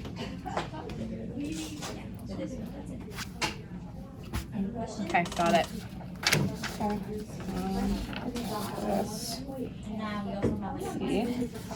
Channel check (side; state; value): both; identical; correlation 1.00